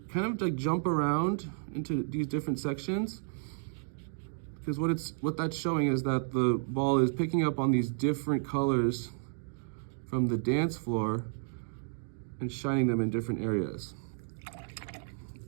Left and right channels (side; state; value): left; silent; digital silence